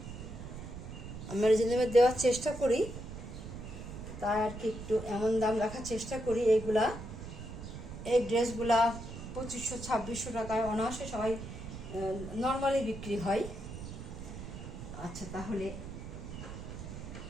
আমরা রিজনেবল দেওয়ার চেষ্টা করি, তাই আর কি একটু এমন দাম রাখার চেষ্টা করি। এইগুলা এই ড্রেসগুলা 2500-2600 টাকায় অনায়াসে সবাই নর্মালি বিক্রি হয়। আচ্ছা তাহলে,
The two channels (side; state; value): right; noise; rumble, 10 dB below the sound